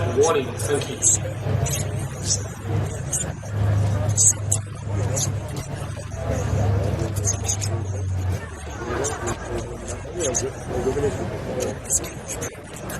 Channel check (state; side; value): identical; both; correlation 1.00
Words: warning. Thank you.